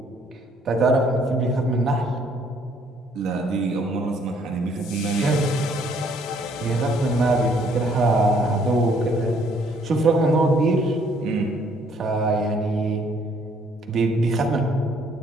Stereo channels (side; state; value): both; normal; correlation 0.64